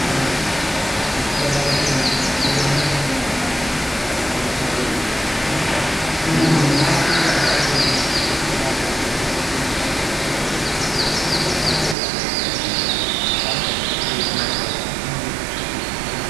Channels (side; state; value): left; drops out; at 12.0 s